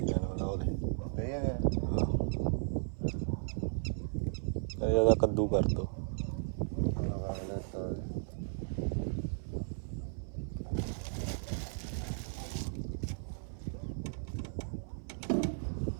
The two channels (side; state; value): left; silent; 54 dB below the other